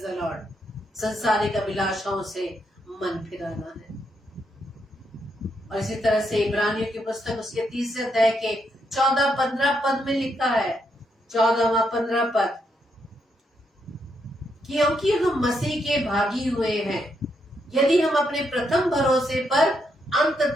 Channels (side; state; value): both; normal; correlation 0.79